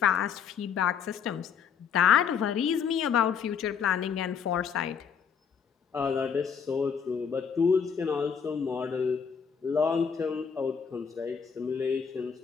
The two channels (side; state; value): right; quieter; 7.0 dB